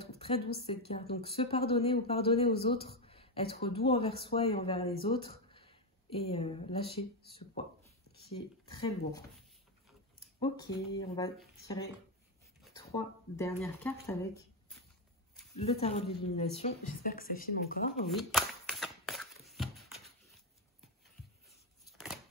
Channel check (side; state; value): both; normal; correlation 0.07